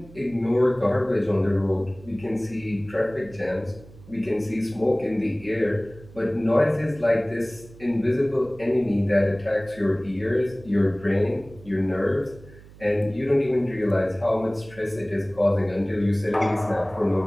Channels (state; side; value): noise; right; hum, 21 dB below the sound